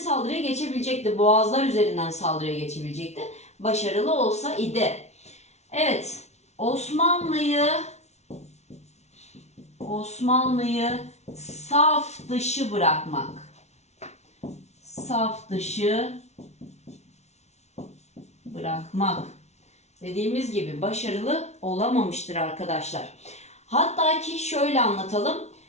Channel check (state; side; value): late; right; 0.32 ms